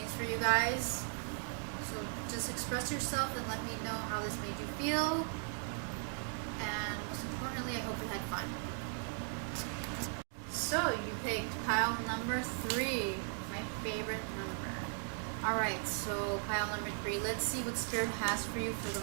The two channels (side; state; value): left; silent; 53 dB below the other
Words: for you guys. So just express yourself and let me know how this made you feel. And most importantly, I hope you had fun. So you picked pile number 3, my favorite number. Alright, so pile number 3. Let's see what Spirit has for you for